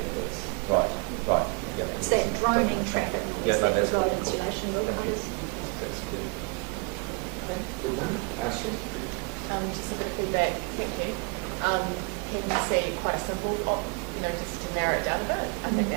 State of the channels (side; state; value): left; quieter; 34.1 dB